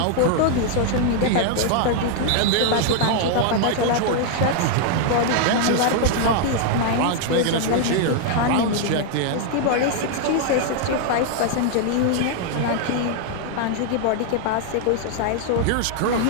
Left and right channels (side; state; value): both; different; correlation 0.00